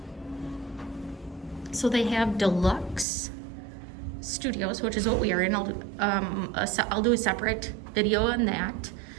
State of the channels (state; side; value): drops out; left; at 3.1 s